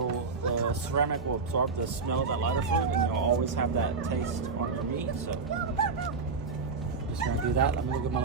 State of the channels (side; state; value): left; quieter; 4.5 dB